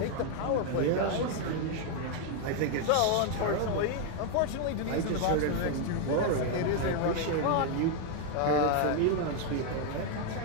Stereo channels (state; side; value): different; both; correlation 0.01